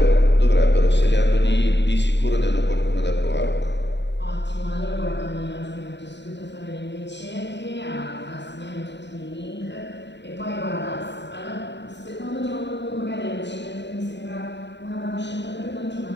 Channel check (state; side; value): late; right; 0.51 ms